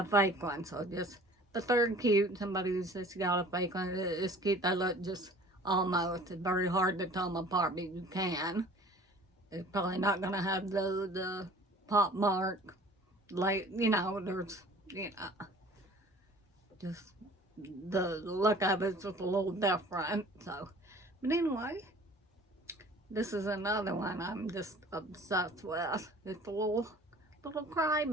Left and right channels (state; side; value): normal; both; correlation 0.47